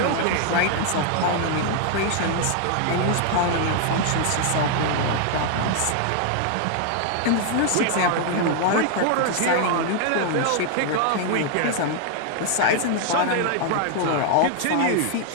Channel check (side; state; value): both; different; correlation 0.00